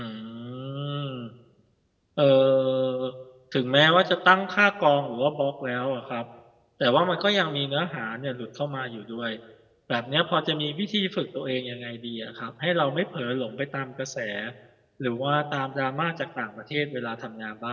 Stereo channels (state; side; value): identical; both; correlation 1.00